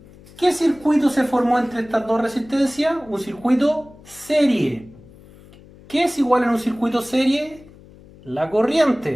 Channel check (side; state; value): left; noise; hum, 23 dB below the sound